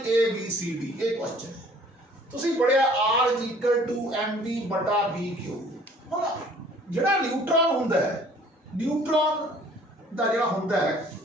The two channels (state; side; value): normal; both; correlation 0.54